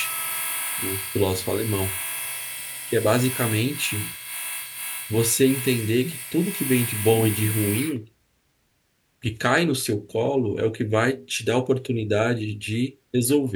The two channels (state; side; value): identical; both; correlation 1.00